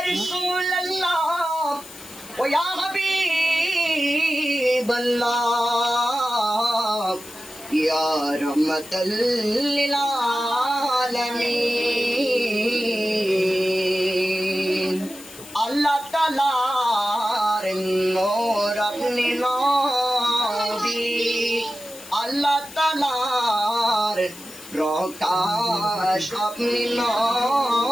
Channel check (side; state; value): left; noise; hiss, 17 dB below the sound